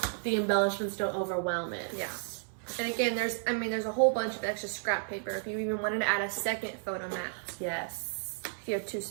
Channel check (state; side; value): silent; left; 56 dB below the other